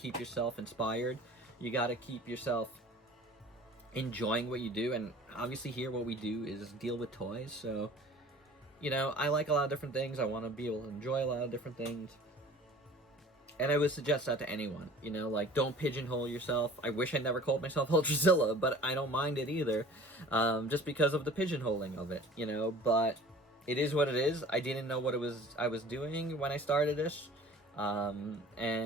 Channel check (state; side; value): normal; both; correlation 0.45